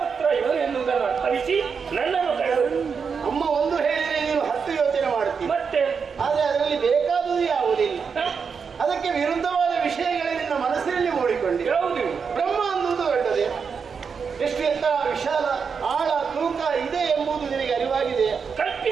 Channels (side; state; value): left; quieter; 5.9 dB